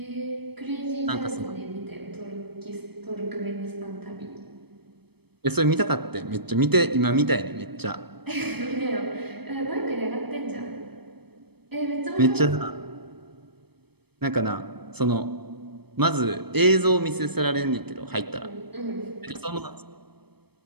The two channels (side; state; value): left; late; 0.97 ms